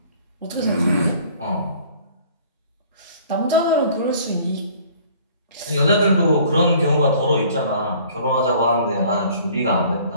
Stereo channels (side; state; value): both; inverted; correlation -0.53